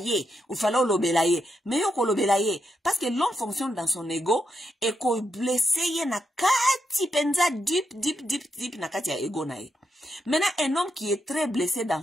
il fallait au lobélayer. Mais au lobélayer, parce que l'homme fonctionne dans son ego, et qu'on blesse na kati penza deep na kati ya ego na ye. Maintenant, un homme qui est très blessé dans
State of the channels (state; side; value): normal; both; correlation 0.83